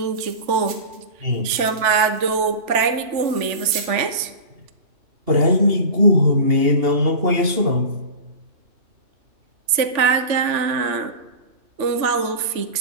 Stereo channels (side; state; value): left; late; 3.4 ms